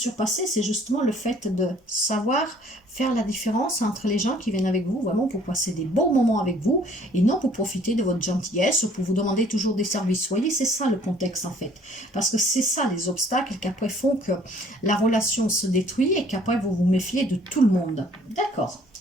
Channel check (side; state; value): both; normal; correlation 0.57